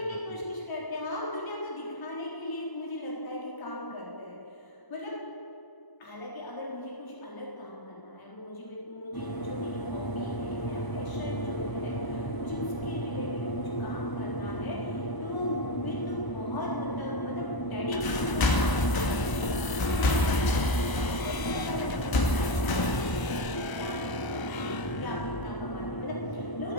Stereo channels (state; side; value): late; right; 1.0 ms